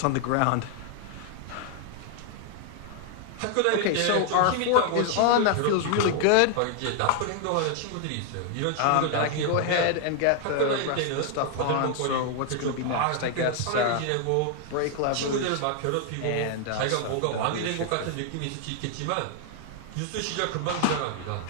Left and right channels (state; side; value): different; both; correlation 0.00